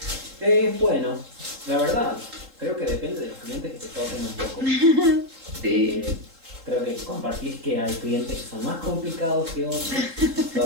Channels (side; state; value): left; late; 3.8 ms